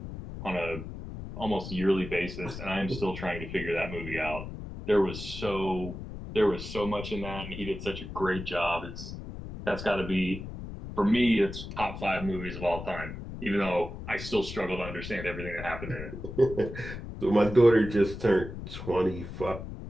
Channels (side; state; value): left; noise; rumble, 9 dB below the sound